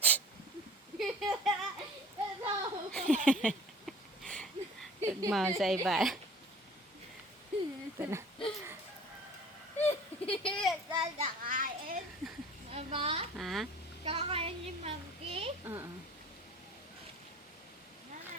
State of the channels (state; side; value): normal; both; correlation 0.45